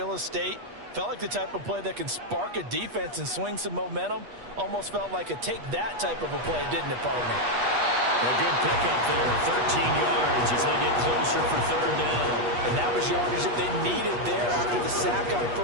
estate. Felt like the type of play that can spark a defense and swing some momentum. Almost felt like a take that type of a play, didn't it, partner? A good pickup there, 13 yards as they get closer for third down. And that was yardage that they needed there after the sack on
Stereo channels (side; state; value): left; late; 8.3 ms